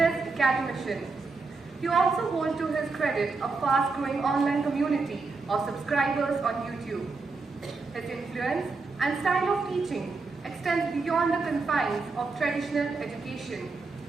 academician. He also holds to his credit a fast-growing online community of subscribers on YouTube. His influence and style of teaching extends beyond the confines of traditional education,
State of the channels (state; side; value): quieter; left; 4.1 dB